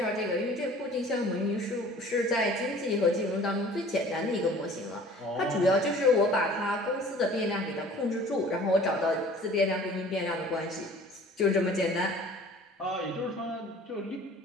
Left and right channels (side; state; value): both; normal; correlation 0.48